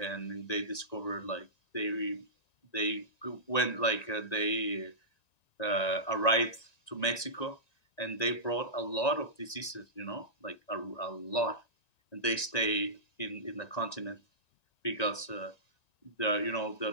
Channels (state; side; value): late; right; 1.9 ms